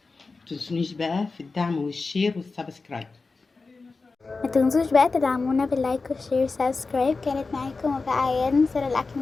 متنسونيش بقى في الدعم والشير والسبسكرايب. ما تنسوش بقى تدعمونا باللايك والشير والسبسكرايب. كانت معاكم وفاء عياد، نصر الاكل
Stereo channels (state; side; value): quieter; right; 4.0 dB